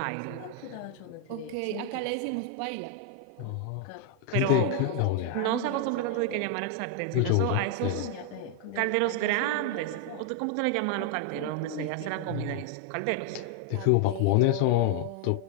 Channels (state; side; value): different; both; correlation 0.00